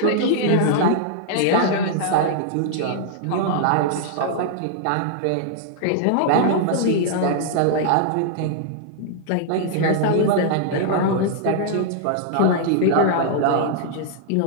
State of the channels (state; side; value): different; both; correlation -0.01